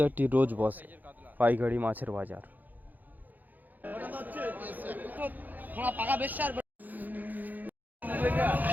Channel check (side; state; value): left; late; 0.084 ms